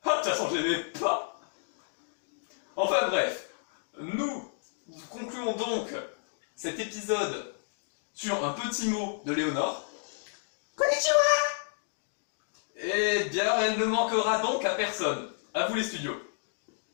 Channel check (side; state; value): right; silent; digital silence